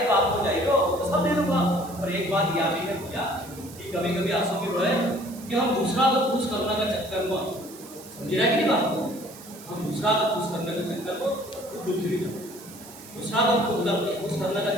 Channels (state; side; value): noise; right; hiss, 18 dB below the sound